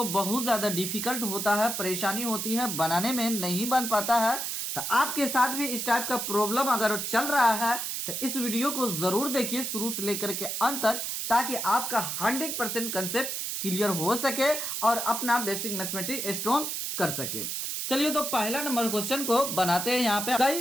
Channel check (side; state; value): right; noise; hiss, 3 dB below the sound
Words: बहुत ज्यादा डिफिकल्ट होता है, परेशानी होती है, बनाने में नहीं बन पाता है। तो आपके साथ भी इस टाइप का प्रॉब्लम अगर चल रहा है तो इस वीडियो को जरूर देखिए शुरू से लेकर के अंत तक, ताकि आपका 100% कंसेप्ट क्लियर हो सके और अपना बेसिक मैथमेटिक्स स्ट्रॉन्ग कर सके। चलिए तो पहला नंबर क्वेश्चन को बनाते हैं। यहाँ पे कई